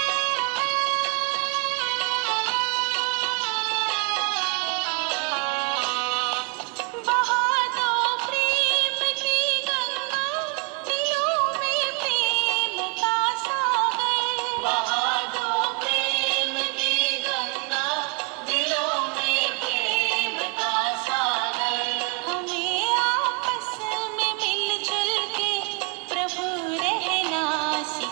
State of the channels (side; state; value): left; quieter; 28.2 dB